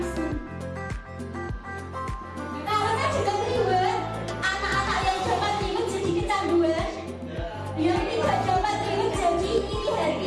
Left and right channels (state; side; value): identical; both; correlation 1.00